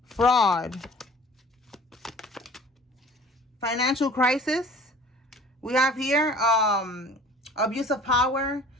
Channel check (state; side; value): normal; both; correlation 0.47